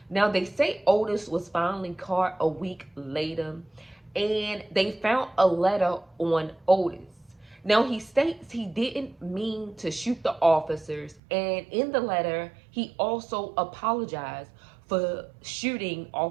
Now, they say Otis was finally caught a week later, and they found a letter on Otis. Now, he states he didn't mean to shoot the officers, and in the letter, he also apologized for shooting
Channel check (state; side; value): drops out; left; at 11.2 s